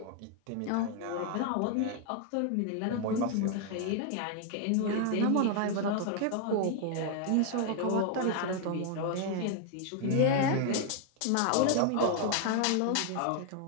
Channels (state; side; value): different; both; correlation 0.00